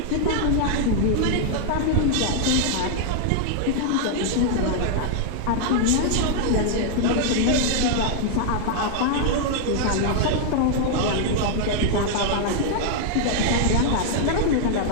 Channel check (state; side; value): different; both; correlation 0.00